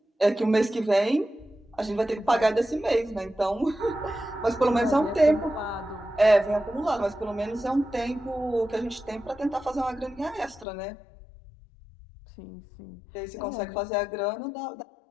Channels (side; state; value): right; drops out; at 10.7 s